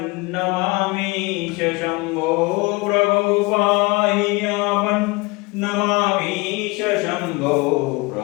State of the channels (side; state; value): right; quieter; 25.2 dB